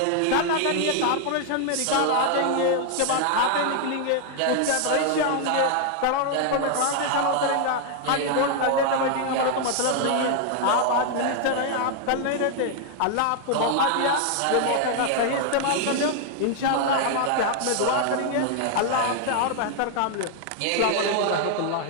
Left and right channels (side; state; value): both; different; correlation 0.00